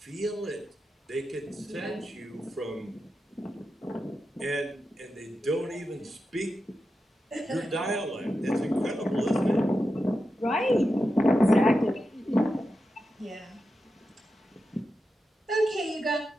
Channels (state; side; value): normal; both; correlation 0.89